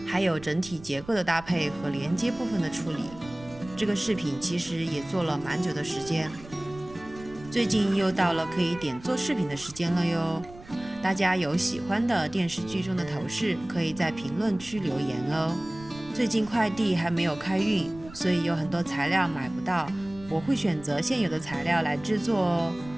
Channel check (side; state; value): right; noise; rumble, 18 dB below the sound